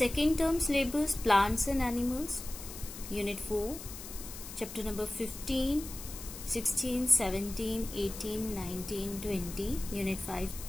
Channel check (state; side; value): noise; left; hiss, 12 dB below the sound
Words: term syllabus plants and animals, unit 4, chapter number 15, 16, 17, 18, 19, 20, Unit 5,